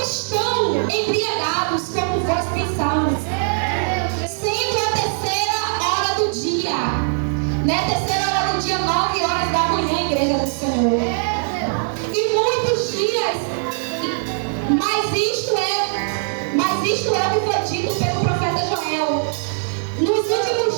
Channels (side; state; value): left; silent; digital silence